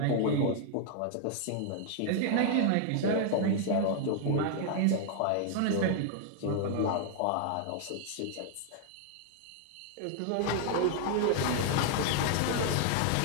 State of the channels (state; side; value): different; both; correlation 0.00